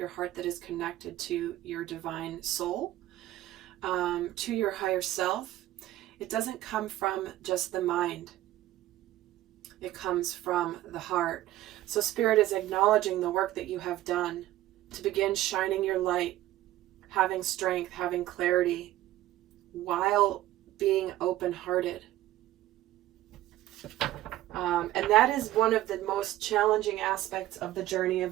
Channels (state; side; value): quieter; left; 14.9 dB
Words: heart that is connected to your divine soul, to your higher self, it doesn't come from just the mind. It comes from the heart. So Spirit is acknowledging the work that you have done to begin shining your light, having strength, having clarity, while being open-hearted. And that is one of the most challenging aspects of the journey